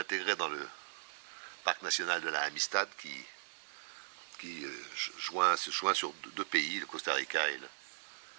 dans le parc national de la Amistad qui se joint sur 2 pays, le Costa Rica et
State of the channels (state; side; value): silent; left; 52 dB below the other